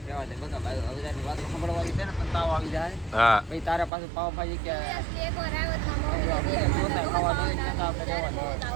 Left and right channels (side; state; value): left; drops out; at 3.9 s